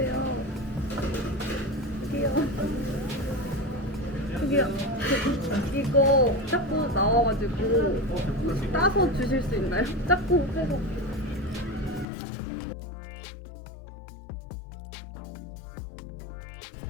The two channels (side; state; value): right; drops out; at 12.1 s